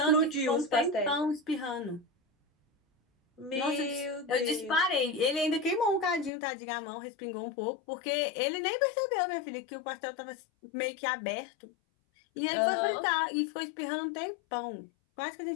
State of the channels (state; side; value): drops out; right; at 6.3 s